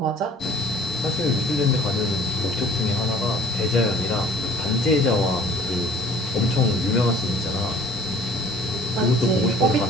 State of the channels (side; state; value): both; normal; correlation 0.49